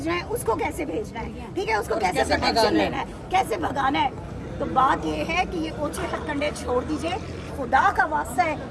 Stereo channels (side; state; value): both; identical; correlation 1.00